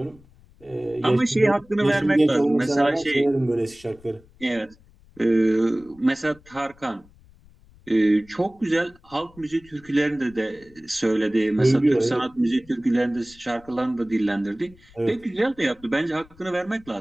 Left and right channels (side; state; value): left; noise; rumble, 27 dB below the sound